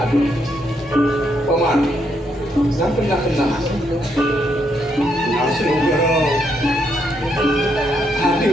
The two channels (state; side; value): normal; both; correlation 0.76